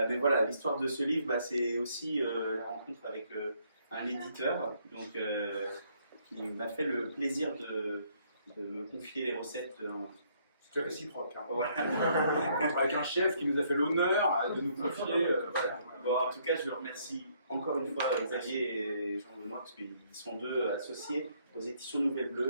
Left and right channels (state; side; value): inverted; both; correlation -0.68